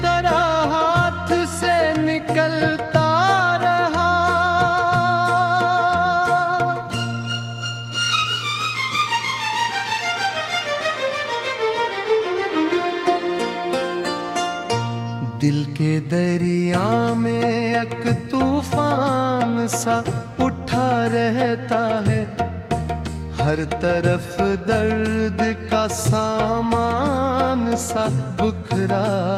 हाथ से निकलता रहा। दिल के दरिया में एक तूफान सा उठा रहता है। हर तरफ दर्द का सामान सा बिखरा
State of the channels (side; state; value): both; identical; correlation 1.00